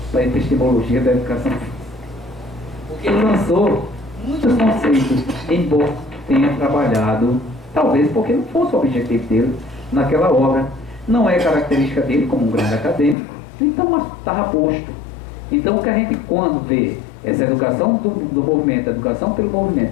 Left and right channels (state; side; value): drops out; right; at 13.2 s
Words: para a epistemologia da educação física. Porque ele lançou muitos conceitos, embora tenha trabalhado, talvez porque não fosse o objetivo dele naquela obra. Não é característica dele como um grande acadêmico, então estava posto. Então o que a gente, quando vê essa educação do movimento, a educação pelo movimento,